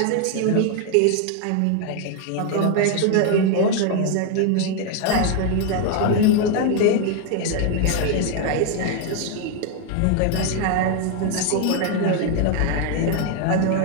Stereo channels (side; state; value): both; different; correlation 0.01